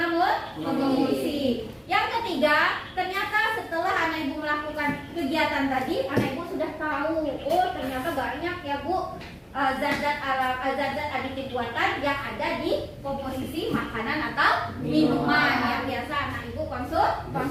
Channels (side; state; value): both; identical; correlation 1.00